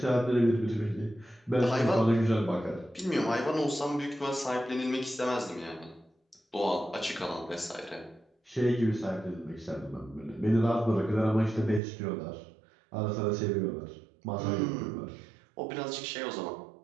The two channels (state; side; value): drops out; left; at 11.8 s